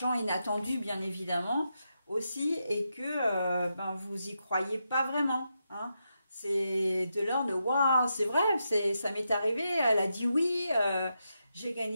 inattendu, bien évidemment, aussi, et que ben, vous y croyez pas vraiment, hein. C'est de l'ordre de waouh, c'est vrai, ça m'est arrivé, elle a dit oui, j'ai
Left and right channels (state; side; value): inverted; both; correlation -0.85